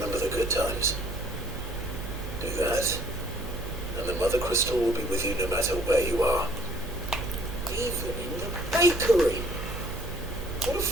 the good times. Do that, and the Mother Crystal will be with you no matter where you are. Even in the bakery. What a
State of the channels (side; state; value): right; noise; hum, 8 dB below the sound